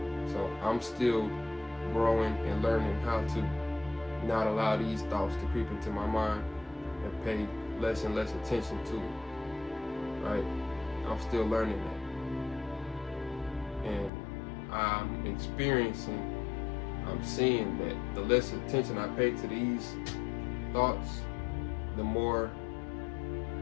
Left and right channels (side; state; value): right; drops out; at 14.1 s